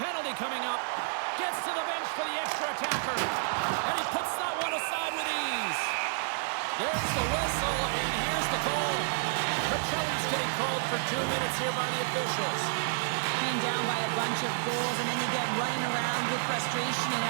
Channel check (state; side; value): silent; left; digital silence